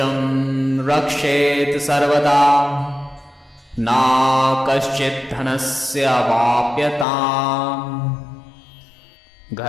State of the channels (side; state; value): right; drops out; at 7.1 s